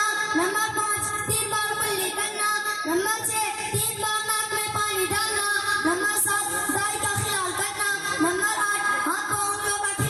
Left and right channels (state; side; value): identical; both; correlation 1.00